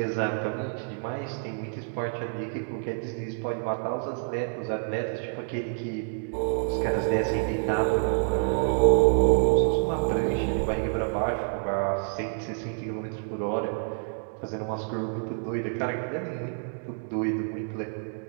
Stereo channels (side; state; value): left; silent; 59 dB below the other